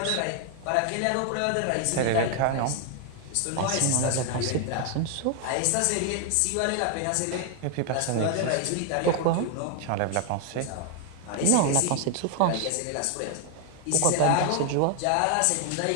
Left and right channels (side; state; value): both; different; correlation 0.00